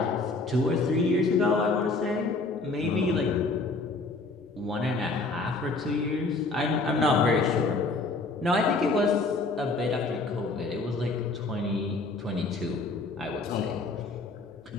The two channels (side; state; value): right; quieter; 3.5 dB